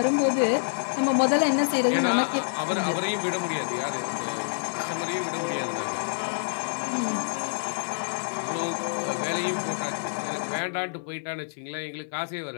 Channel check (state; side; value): silent; right; 55 dB below the other